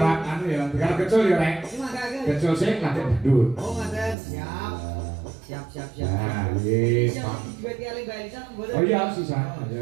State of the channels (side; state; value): left; drops out; at 4.2 s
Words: anu ya, tiga kecil ya, Rek. Iki mangkake. Kecil sih latih bedut. Oh, ngaten. Siap. Siap. Nah, yes, Pak. Duit ki Mbak Elisa mboten. Oh iya, sisa.